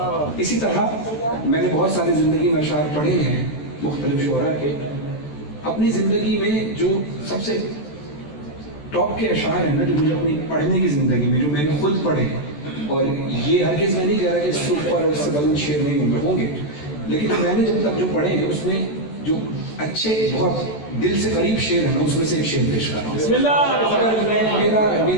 इसी तरह मैंने बहुत सारी ज़िंदगी में अशार पढ़े हैं मुख्तलिफ शुअरा के। अपनी ज़िंदगी में जो सबसे टॉप के अशार हैं ना, जो मुझे अपनी पढ़ने की ज़िंदगी में जो मैंने खुद पढ़े, और ये हरगिज़ मैं नहीं कह रहा कि इससे ऊपर और इससे बुलंद शेर नहीं होंगे, लेकिन मैंने जब तक जो पढ़े हैं उसमें जो अच्छे बहुत दिल से करीब शेर है ना, उसमें से एक शेर पेश कर रहा हूँ। अगर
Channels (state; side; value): late; right; 14 ms